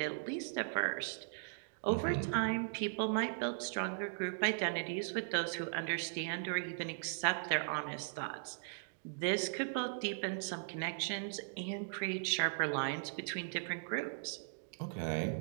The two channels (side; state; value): left; silent; digital silence